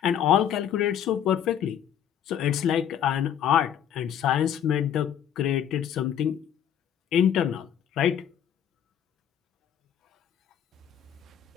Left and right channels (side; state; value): right; quieter; 9.5 dB